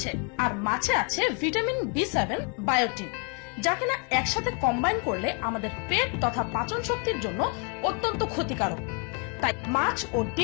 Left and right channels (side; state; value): right; quieter; 35.9 dB